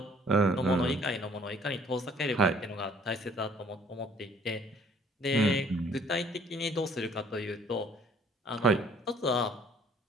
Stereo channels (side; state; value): both; normal; correlation 0.59